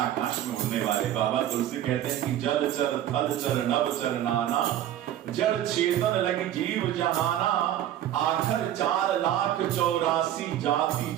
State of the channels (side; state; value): left; quieter; 11.8 dB